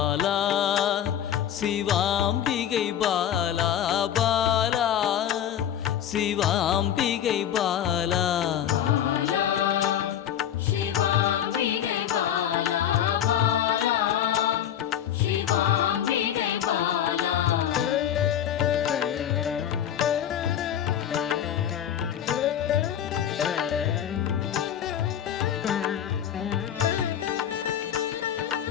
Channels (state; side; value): quieter; right; 10.0 dB